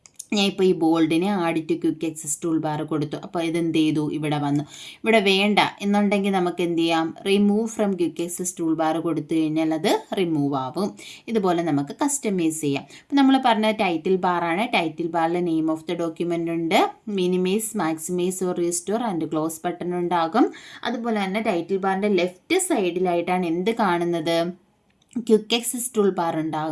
ഞാൻ ഇപ്പോൾ ഈ ബോൾഡിനെ add to quick access tool bar കൊടുത്തു. അപ്പോൾ ഇതെന്ത് ചെയ്തു, ഇവിടെ വന്നു. ഇവിടെ വേണ്ട എന്നുണ്ടെങ്കിൽ നമുക്ക് എന്ത് ചെയ്യാം, remove from quick access tool bar കൊടുത്തു കഴിഞ്ഞാൽ അത് റിമൂവ് ആവും. ഇതുപോലെ നമുക്ക് കസ്റ്റമൈസ് ചെയ്യാം. അപ്പോൾ നമ്മൾ പറഞ്ഞ ടൈറ്റിൽ ബാറാണ്. ടൈറ്റിൽ ബാറിൽ നെയിം ഓഫ് ദ ഡോക്യുമെൻ്റ് ഉണ്ട്, minimize, maximize or restore and close button ഉണ്ടാകും. അതുപോലെ തന്നെ ടൈറ്റിൽ ബാറിൻ്റെ ലെഫ്റ്റ് സൈഡിലായിട്ടാണ് എന്ത് കാണുന്നത്, ക്വിക്ക് ആക്സസ് ടൂൾ ബാർ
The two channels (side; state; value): both; identical; correlation 1.00